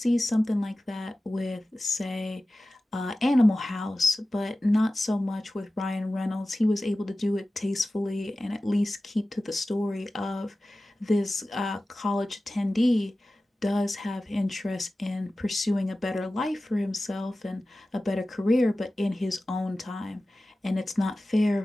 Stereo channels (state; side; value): normal; both; correlation 0.96